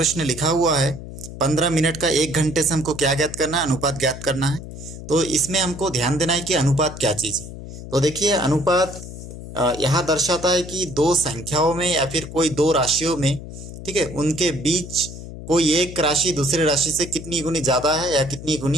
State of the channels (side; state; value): left; noise; hum, 12 dB below the sound